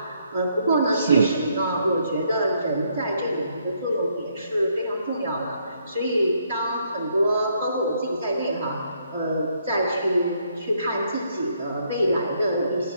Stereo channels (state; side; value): inverted; both; correlation -0.72